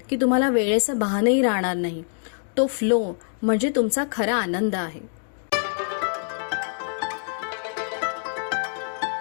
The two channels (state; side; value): silent; right; 61 dB below the other